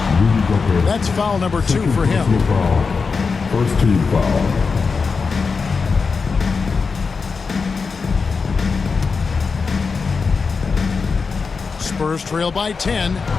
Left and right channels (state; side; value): quieter; right; 4.9 dB